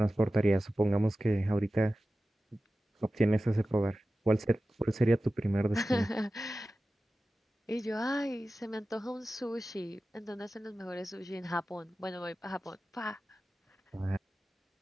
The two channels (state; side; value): normal; both; correlation 0.95